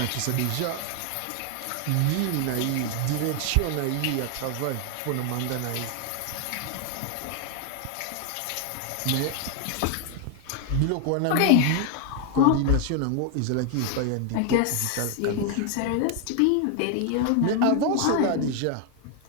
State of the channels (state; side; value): different; both; correlation 0.00